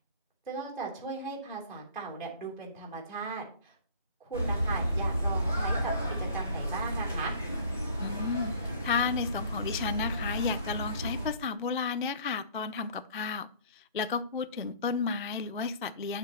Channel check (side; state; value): both; inverted; correlation -0.48